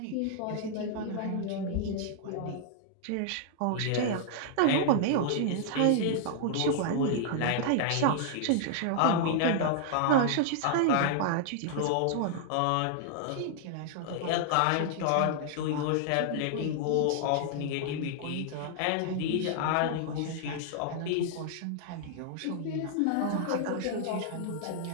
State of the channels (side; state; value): both; different; correlation -0.01